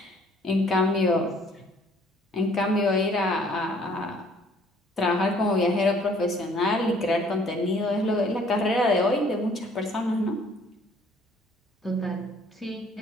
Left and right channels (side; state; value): both; normal; correlation 0.59